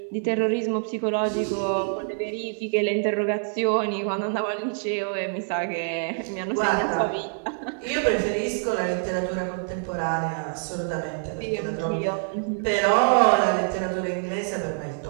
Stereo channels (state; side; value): silent; left; digital silence